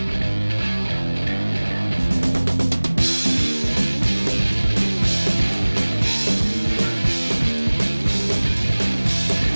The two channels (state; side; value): inverted; both; correlation -1.00